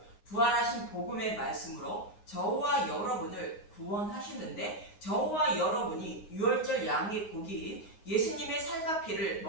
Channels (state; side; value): late; right; 9.6 ms